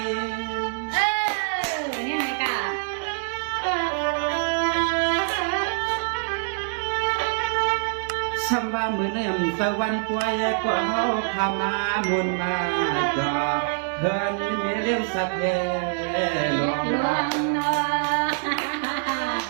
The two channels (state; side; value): silent; left; digital silence